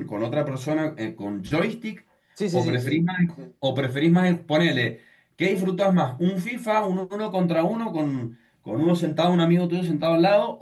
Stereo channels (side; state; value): both; identical; correlation 1.00